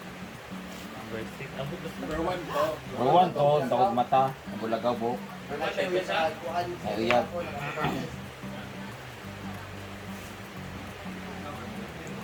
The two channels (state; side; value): identical; both; correlation 1.00